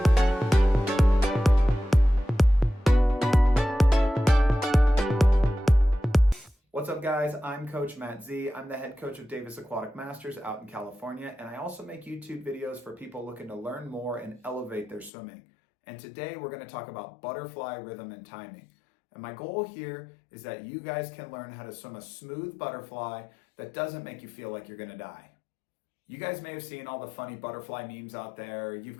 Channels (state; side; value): drops out; right; at 15.1 s